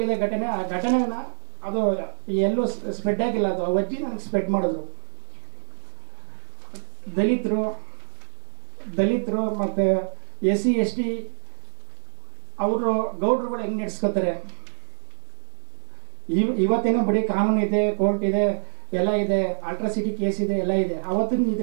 ಘಟನೆ. ಆ ಘಟನೆನ ಅದು ಎಲ್ಲೂ ಸ್ಪ್ರೆಡ್ ಆಗಿಲ್ಲ. ಅದು ಅಜ್ಜಿ ನನಗೆ ಸ್ಪ್ರೆಡ್ ಮಾಡಿದ್ರು. ದಲಿತರು ಮತ್ತು SC ST ಅವರು ಗೌಡ್ರುಗಳು ಹೆಂಗೆ ನಡೆಸ್ಕೋತಾರೆ. ಇವತ್ತೇನೋ ಬರೀ ಕಾನೂನು ಇದೆ, ಕೋರ್ಟ್ ಇದೆ, ಎಲ್ಲ ಇದೆ, ಅಲ್ಟ್ರಾಸಿಟಿ ಕೇಸ್ ಇದೆ, ಎಲ್ಲ ಇದೆ. ಅವತ್ತಿನ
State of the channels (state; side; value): silent; left; digital silence